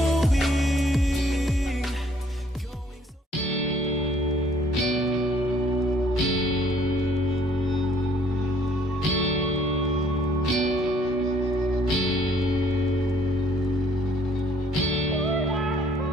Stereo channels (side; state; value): both; normal; correlation 0.61